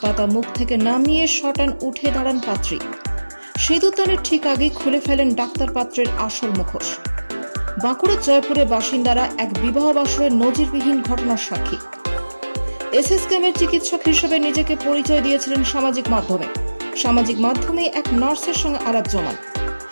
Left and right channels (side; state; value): both; inverted; correlation -1.00